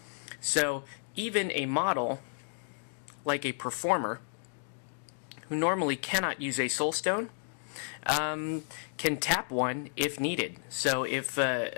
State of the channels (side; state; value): right; silent; digital silence